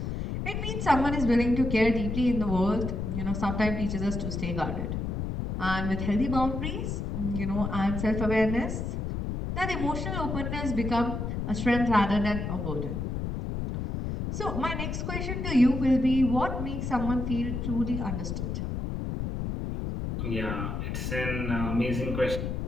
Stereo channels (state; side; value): noise; left; rumble, 3 dB below the sound